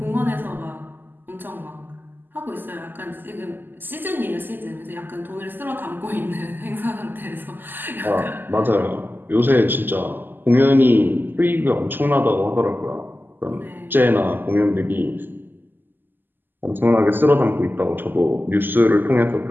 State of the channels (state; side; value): late; left; 0.091 ms